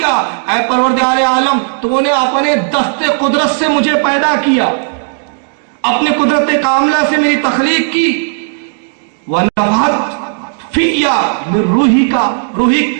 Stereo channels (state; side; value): silent; left; 63 dB below the other